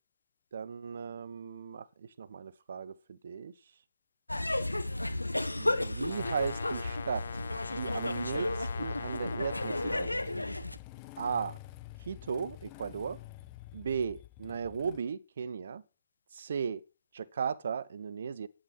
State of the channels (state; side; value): inverted; both; correlation -0.86